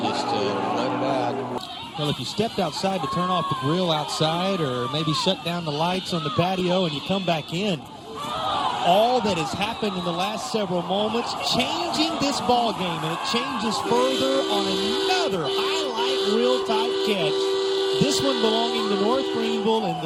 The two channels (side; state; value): both; identical; correlation 1.00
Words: just let it out. Well, if you stepped outside to turn off the grill outside or maybe shut down the lights on the patio and you come back in, all that has happened in the last several moments, changing this ball game, and it changes further on another highlight reel type catch. This one belonging to North Greenville in